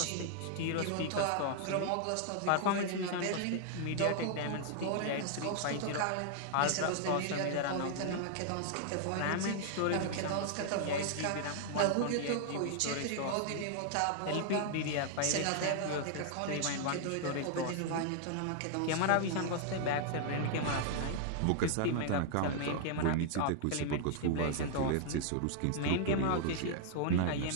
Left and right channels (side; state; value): both; different; correlation -0.01